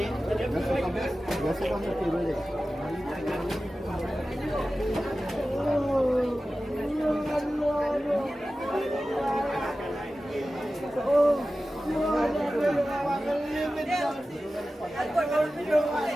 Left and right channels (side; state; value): both; normal; correlation 0.95